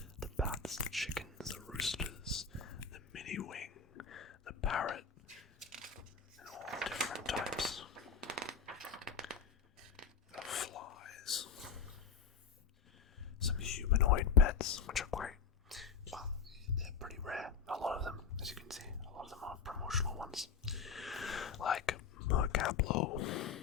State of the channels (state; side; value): quieter; right; 5.8 dB